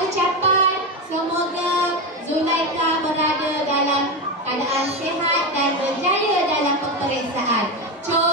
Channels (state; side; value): normal; both; correlation 0.15